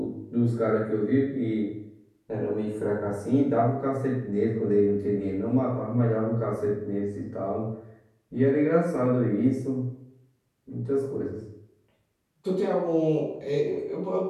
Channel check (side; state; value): both; identical; correlation 1.00